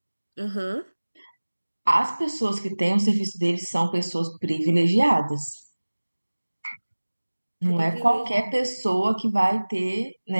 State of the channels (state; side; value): inverted; both; correlation -1.00